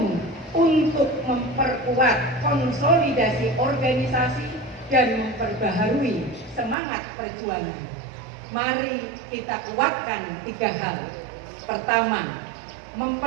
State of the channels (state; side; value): drops out; left; at 6.8 s